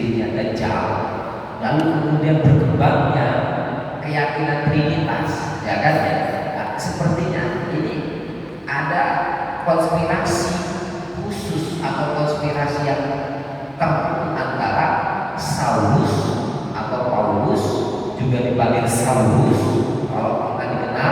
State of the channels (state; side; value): identical; both; correlation 1.00